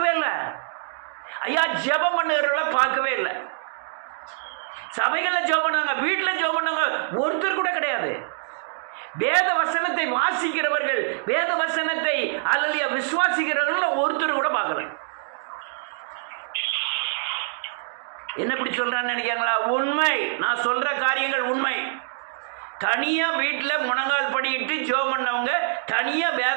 இல்லை. ஐயா ஜெபம் பண்ணுறவர்களை பார்க்கவே இல்லை. சபைகளில் ஜெபம் பண்ணாங்க, வீட்டில் ஜெபம் பண்ணாங்க, ஒருத்தர் கூட கிடையாது. வேத வசனத்தை வாசிக்கிறவர்கள், வேத வசனத்தை அல்லது விசுவாசிக்கிறவர்கள் ஒருத்தர் கூட பார்க்கல. என்ன இப்படி சொல்றான்னு நினைக்கிறீங்களா? உண்மை, நான் சொல்ற காரியங்கள் உண்மை. தனியா வீட்டில் முழங்கால் படிக்கிட்டு ஜெபம் பண்ணவங்க, தனியா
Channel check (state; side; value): silent; left; digital silence